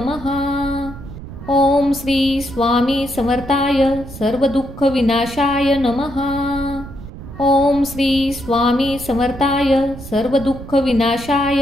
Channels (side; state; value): right; noise; rumble, 13 dB below the sound